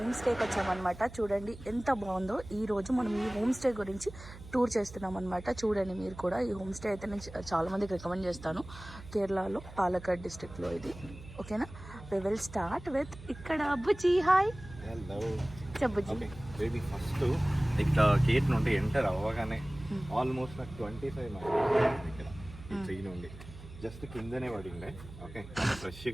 స్టేకి వచ్చామన్నమాట. చూడండి ఎంత బాగుందో. ఈరోజు మనం ఈ హోమ్ స్టే గురించి టూర్ చేస్తున్నాం అనమాట. చూడండి మీరు కూడా. ఈ హోమ్ స్టే అయితే నేను చాలా మందికి రికమెండ్ చేస్తాను. కేరళలో పాలక్కాడ్ డిస్ట్రిక్ట్లో ఇది. ఓకేనా, వి విల్ స్టార్ట్ విత్ ఇక్కడ అబ్బుజీ. హాయ్, చెప్పుజీ. బేబీ ఫస్ట్ ఇక్కడ గేట్ నుండి ఎంటర్ అవ్వగానే ఆల్మోస్ట్ నాకు 25 మైల్స్ ఇక్కడ ట్రీ నుండి జస్ట్ కిందనే పడిండే. ఓకే,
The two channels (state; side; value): noise; right; hum, 16 dB below the sound